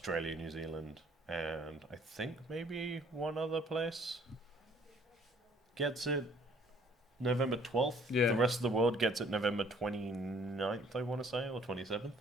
New Zealand, and I think maybe one other place gets it November 12th. Yeah. The rest of the world gets it November 29th, I want to say, or 27th.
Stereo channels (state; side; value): normal; both; correlation 0.59